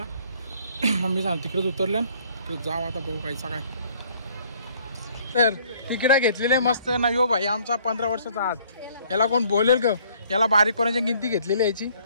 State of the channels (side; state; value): both; inverted; correlation -0.60